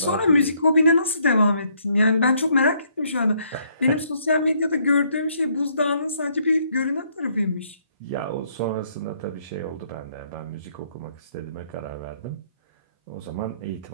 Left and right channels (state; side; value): inverted; both; correlation -0.69